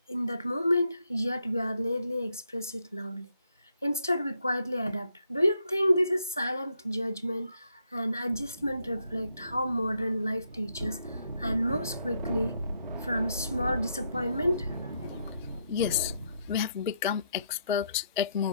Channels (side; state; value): both; inverted; correlation -0.76